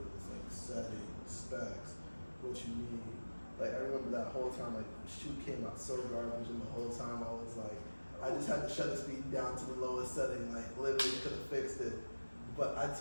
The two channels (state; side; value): inverted; both; correlation -1.00